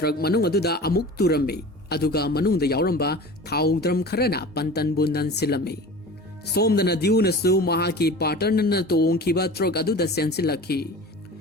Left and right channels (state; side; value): normal; both; correlation 0.38